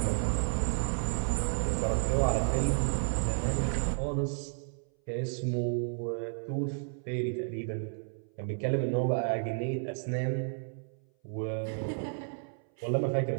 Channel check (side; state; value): left; silent; 56 dB below the other